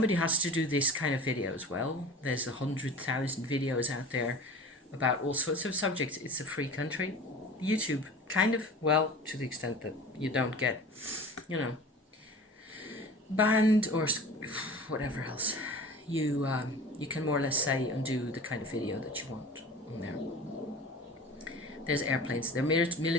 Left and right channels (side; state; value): both; normal; correlation 0.38